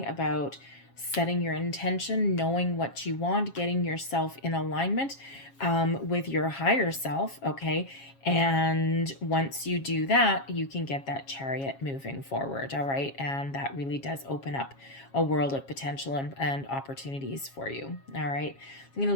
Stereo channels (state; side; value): late; right; 7.3 ms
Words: about setting your intention, knowing what you want, getting yourself in alignment with your higher self, okay? And once you do that, you can get that chariot moving forward, all right? And that really does open up a world of potential and opportunities for you, all right? I'm going to